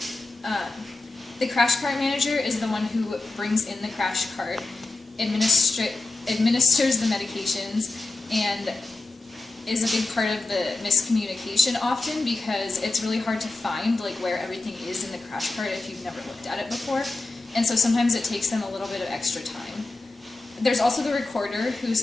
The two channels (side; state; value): right; quieter; 3.3 dB